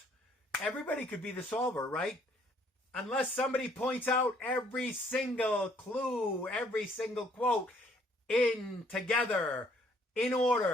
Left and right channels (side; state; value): both; normal; correlation 0.64